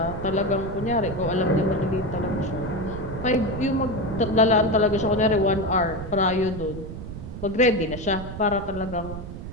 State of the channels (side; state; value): right; noise; rumble, 9 dB below the sound